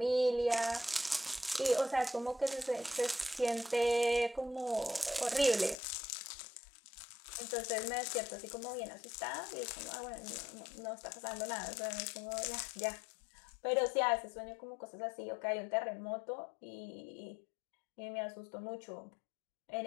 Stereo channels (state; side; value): drops out; right; at 5.8 s